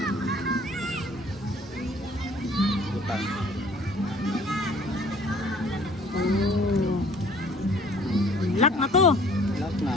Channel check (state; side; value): normal; both; correlation 0.55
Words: Utang. Lock na to. Lock